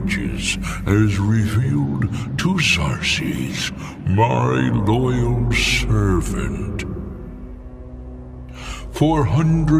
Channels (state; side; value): identical; both; correlation 1.00